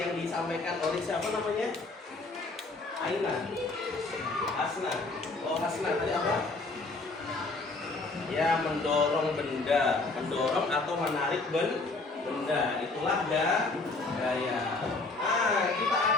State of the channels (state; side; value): quieter; right; 3.5 dB